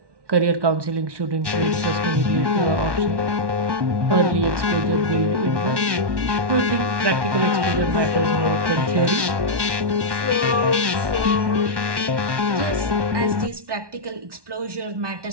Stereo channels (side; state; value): left; late; 1.1 ms